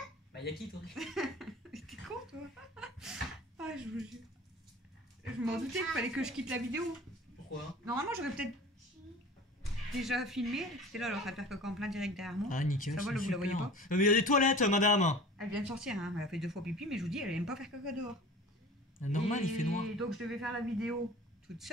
Bah, yakitori. T'es con toi. Ah, je vous jure. Je m'en doutais qu'il fallait que je quitte la vidéo. Pourquoi? Normalement, j'aurais peut-être déjà filmé. C'était là, elle est en train de faire caca en plein direct derrière moi. Ah, nickel. Ça va, c'est vous la voyez super. pas? Mais il y a des toilettes, madame. Elle vient de sortir, hein. Elle a fait 2 fois pipi, mais je vous dis, elle aime pas faire caca dehors. Normal, Et il fait noir. Donc je devais faire la vidéo toute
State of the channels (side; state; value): both; normal; correlation 0.41